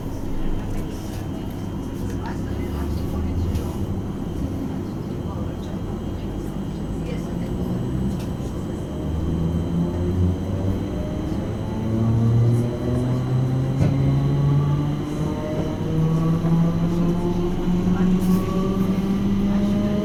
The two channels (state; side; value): identical; both; correlation 1.00